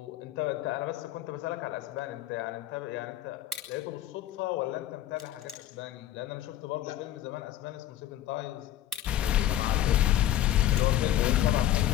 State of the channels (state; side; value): quieter; right; 12.5 dB